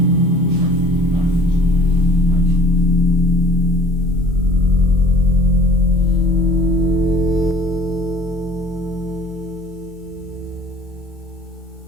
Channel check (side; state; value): both; normal; correlation 0.51